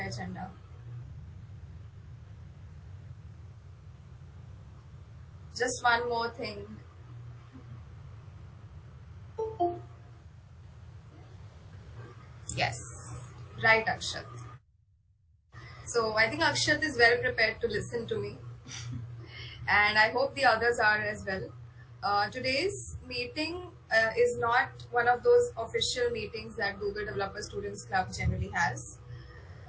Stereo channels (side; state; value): both; identical; correlation 1.00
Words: agenda. Just one more thing. Yes, right, Akshat. So I think Akshat is well prepared to listen to me, and I hope the others are as well. Today's meeting is not one of those official meetings that Google Developer Students Club generally has.